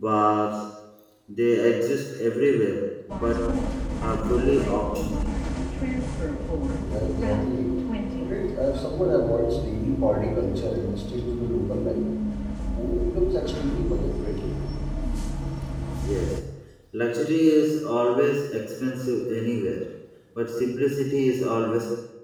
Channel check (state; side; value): identical; both; correlation 1.00